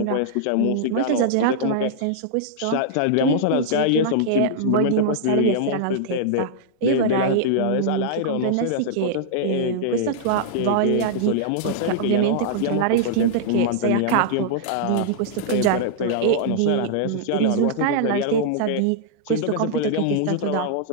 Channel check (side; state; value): both; different; correlation -0.02